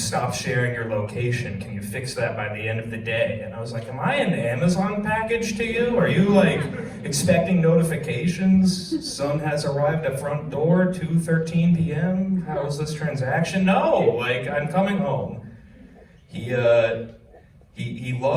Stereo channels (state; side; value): identical; both; correlation 1.00